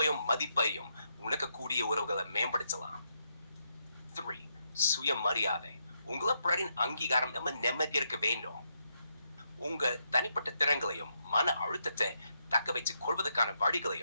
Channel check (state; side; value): inverted; both; correlation -0.80